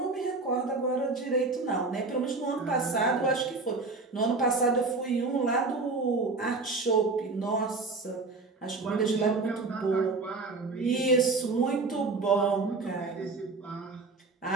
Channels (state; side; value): quieter; left; 3.7 dB